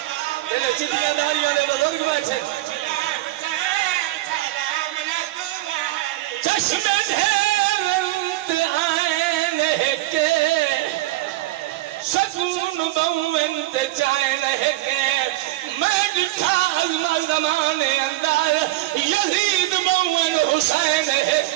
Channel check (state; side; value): quieter; left; 17.2 dB